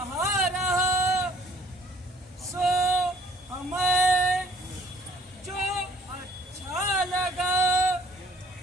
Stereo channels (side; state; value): both; normal; correlation 0.56